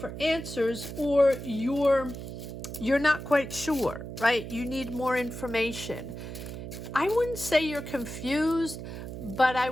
answers, or you're not quite sure, right? You need more information. I wouldn't say you're confused, but I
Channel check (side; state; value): right; noise; hum, 9 dB below the sound